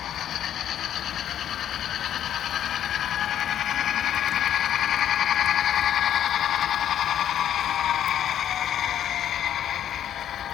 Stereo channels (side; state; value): right; quieter; 10.5 dB